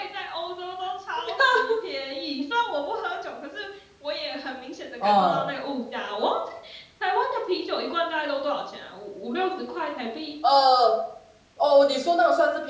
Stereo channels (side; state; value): both; identical; correlation 1.00